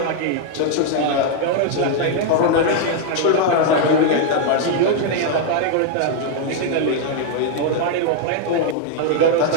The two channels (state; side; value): different; both; correlation 0.00